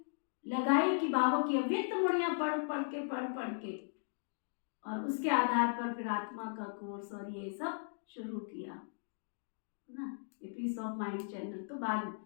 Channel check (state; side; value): silent; right; digital silence